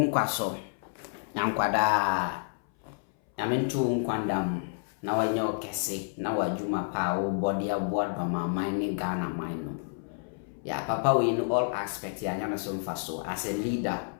so. Nyankwada. Nyamentu unkwandam na wanya okese na wajuma pa o body aboa Dormaahene Ghana mine no. Yeah, Papa we in all aspects ya nyana so mfa so as a leader.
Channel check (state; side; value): silent; right; 58 dB below the other